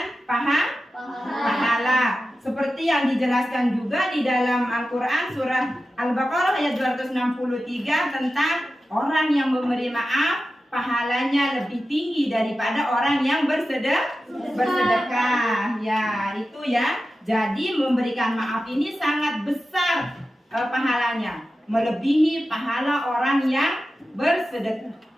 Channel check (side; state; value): both; normal; correlation 0.93